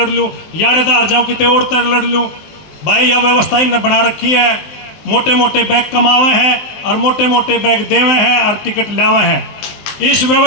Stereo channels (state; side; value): late; right; 19 ms